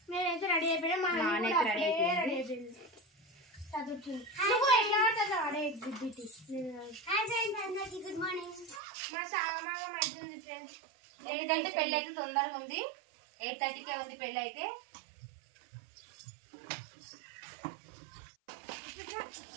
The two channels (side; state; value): left; drops out; at 8.8 s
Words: నేనైతే రెడీ అయిపోయినా, మా నాన్న అయితే రెడీ అయిపోయింది. Good morning. మా సాగమాగం అవుతుంది ఫ్రెండ్స్, ఎందుకంటే పెళ్ళి అయితే తొందరగా ఉంది. 8:30కే ఉంది పెళ్ళి అయితే.